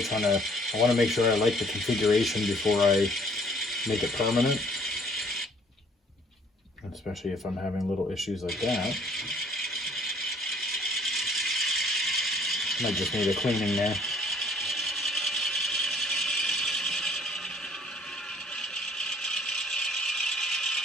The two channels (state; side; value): normal; both; correlation 0.58